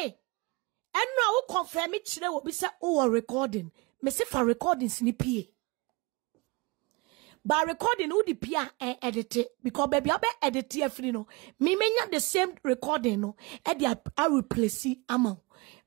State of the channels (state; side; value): quieter; left; 25.8 dB